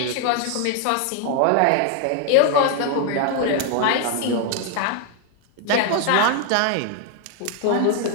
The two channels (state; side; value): different; both; correlation 0.00